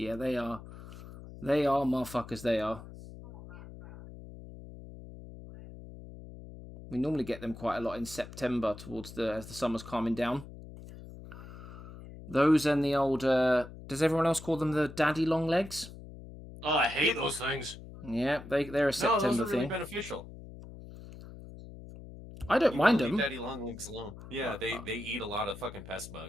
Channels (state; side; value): noise; left; hum, 15 dB below the sound